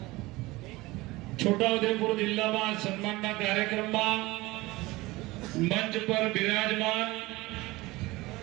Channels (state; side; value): quieter; left; 20.7 dB